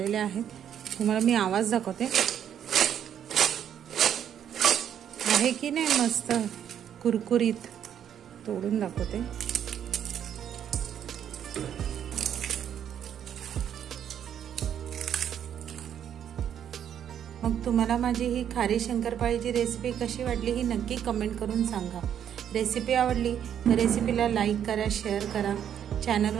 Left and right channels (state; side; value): quieter; left; 9.3 dB